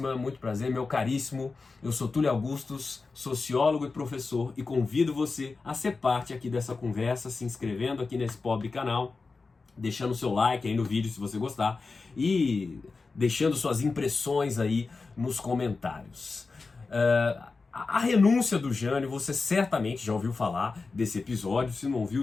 muito prazer, meu caríssimo. Eu sou Túlio Augustus, sociólogo e professor, e convido você a ser parte aqui dessa conversa, se inscrevendo aqui nesse pobre canal, deixando seu like aí no vídeo se você gostar e deixando suas impressões aí nos comentários. A renúncia do Jânio, você certamente já ouviu falar desse episódio, se não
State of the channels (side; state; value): right; quieter; 4.1 dB